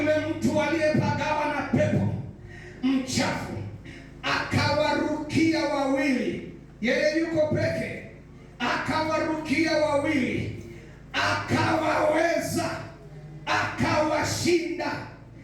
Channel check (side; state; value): both; identical; correlation 1.00